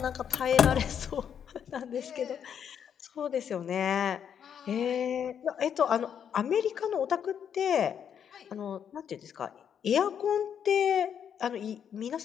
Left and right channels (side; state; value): right; quieter; 8.3 dB